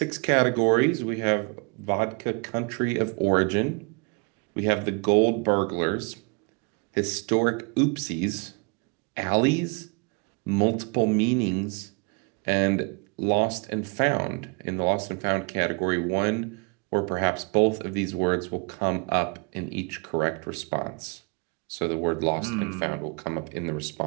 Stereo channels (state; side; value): quieter; left; 32.5 dB